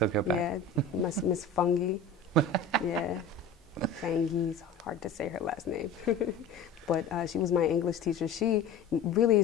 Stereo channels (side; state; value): right; quieter; 4.0 dB